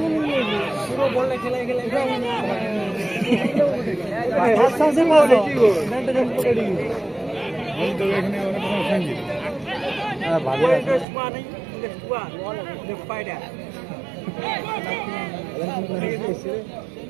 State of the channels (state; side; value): drops out; left; at 11.1 s